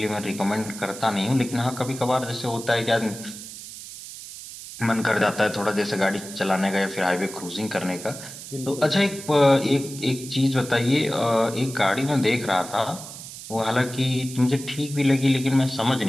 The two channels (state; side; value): noise; right; hiss, 13 dB below the sound